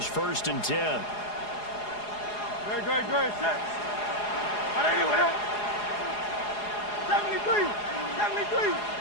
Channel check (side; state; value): right; late; 4.8 ms